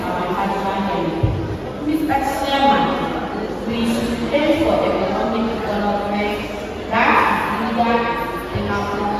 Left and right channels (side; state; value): both; identical; correlation 1.00